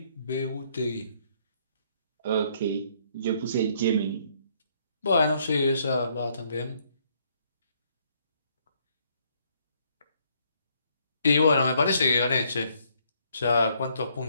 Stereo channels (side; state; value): both; inverted; correlation -0.68